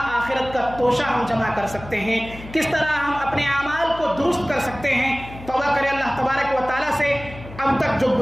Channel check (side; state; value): left; noise; hum, 15 dB below the sound